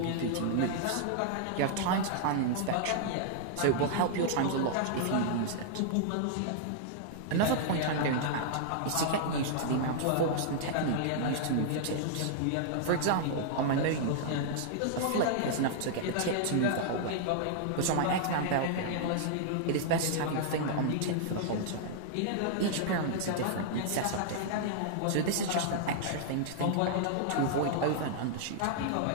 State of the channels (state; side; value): different; both; correlation -0.01